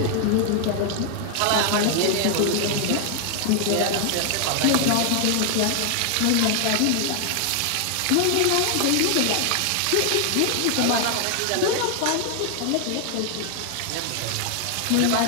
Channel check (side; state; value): both; different; correlation 0.00